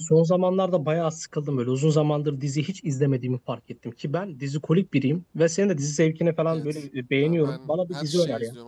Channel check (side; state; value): both; identical; correlation 1.00